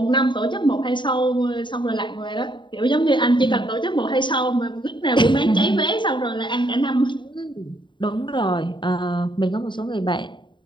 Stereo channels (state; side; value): late; right; 0.23 ms